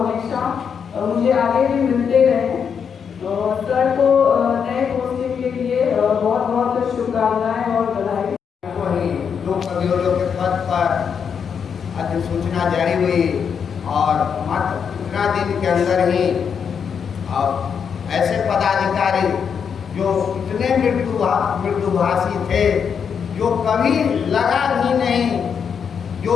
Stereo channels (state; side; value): quieter; right; 7.0 dB